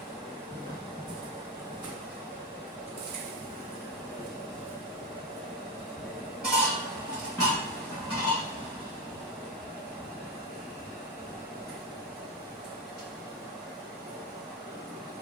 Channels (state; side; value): normal; both; correlation 0.15